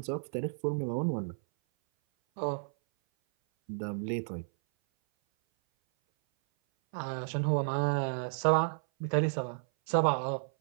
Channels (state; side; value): silent; left; 57 dB below the other